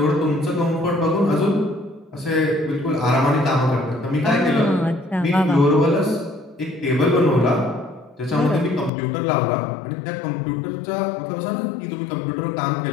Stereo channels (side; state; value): right; drops out; at 8.9 s